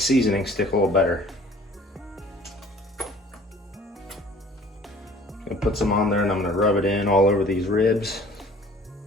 seasoning stick a little better. I'm going to put some on there and I'm going to rub it in all over these ribs.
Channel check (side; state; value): both; normal; correlation 0.50